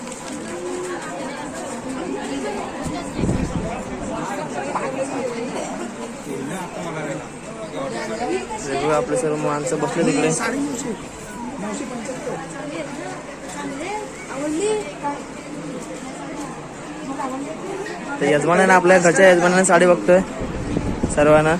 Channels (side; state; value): both; identical; correlation 1.00